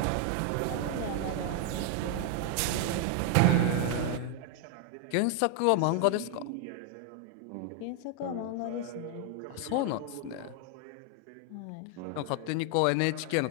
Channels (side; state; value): both; different; correlation 0.00